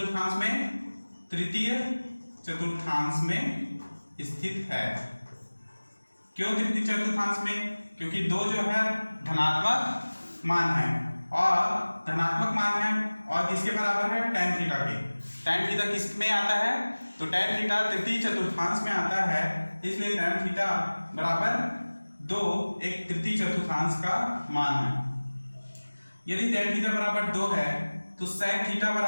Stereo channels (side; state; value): both; inverted; correlation -1.00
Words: में? तृतीय चतुर्थांश में स्थित है। क्यों तृतीय चतुर्थांश में? क्योंकि 2 जो है धनात्मक मान है और धनात्मक मान है और किसके बराबर है? tan थीटा के। tan थीटा किस में आता है? तो tan थीटा तृतीय चतुर्थांश में आता है, इसलिए tan थीटा बराबर 2 एक तृतीय चतुर्थांश का मान है। यदि tan थीटा बराबर 2 है तो sec थीटा